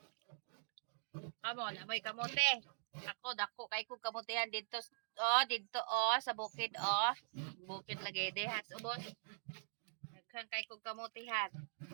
Kamo, namoy kamote. Dako, kay kong kamutihan dito, sa bukid, Bukid lagay de, has, ubos. Nagkang kay kong kamutihan.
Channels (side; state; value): left; silent; digital silence